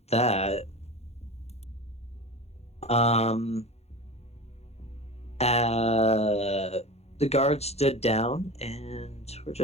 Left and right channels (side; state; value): right; late; 0.31 ms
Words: that, the guard stood down, and we're